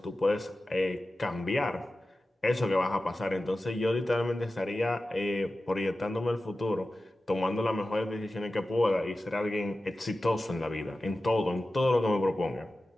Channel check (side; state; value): both; normal; correlation 0.94